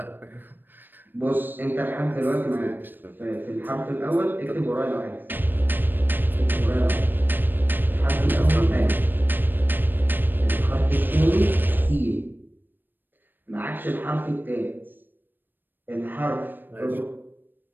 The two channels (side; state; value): left; late; 0.093 ms